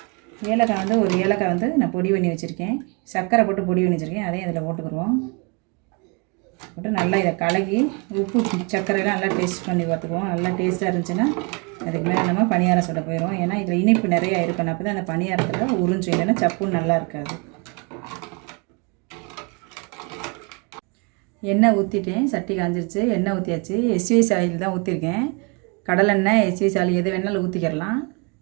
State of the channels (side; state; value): left; quieter; 32.6 dB